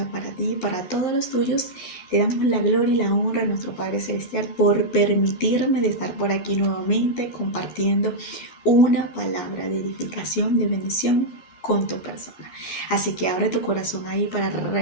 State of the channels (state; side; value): late; right; 11 ms